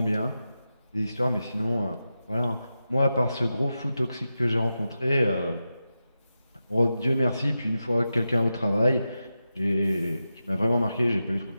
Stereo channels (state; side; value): inverted; both; correlation -0.91